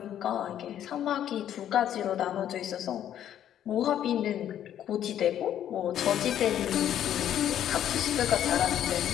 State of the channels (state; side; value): quieter; right; 10.7 dB